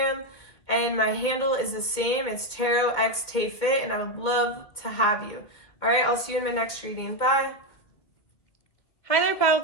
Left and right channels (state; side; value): late; right; 2.4 ms